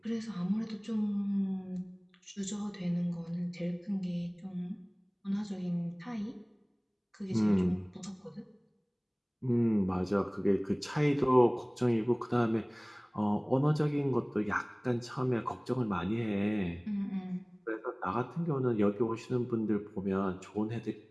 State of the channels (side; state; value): both; identical; correlation 1.00